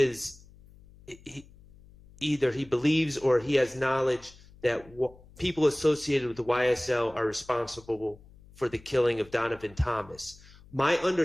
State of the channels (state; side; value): noise; left; hum, 24 dB below the sound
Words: either he believes or he has knowledge that people associated with the YSL are responsible for the killing of Donovan Thomas. My